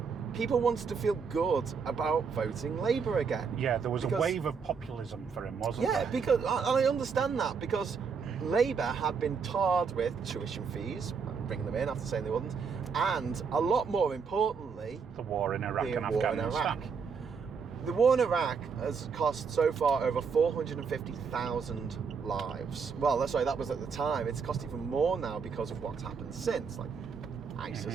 people wanted to feel good about voting Labour again. Yeah, there was a wave of populism for him, wasn't there? Yeah, because, and I understand that, because Labour had been tarred with tuition fees, bringing them in after saying they wouldn't, and a lot more importantly, the war in Iraq and Afghanistan. The war in Iraq has cost so far over 450,000 lives. Well, that's right, that was at the time. It's cost even more now because of what's happened since, like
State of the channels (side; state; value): left; quieter; 5.8 dB